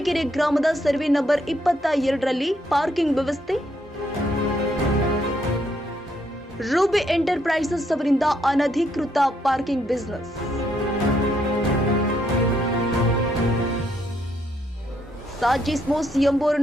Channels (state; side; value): normal; both; correlation 0.74